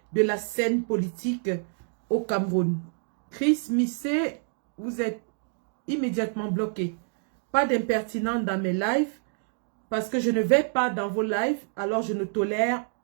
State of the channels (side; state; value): left; silent; 60 dB below the other